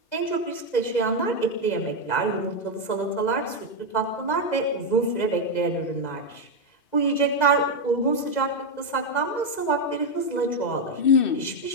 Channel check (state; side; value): late; right; 2.0 ms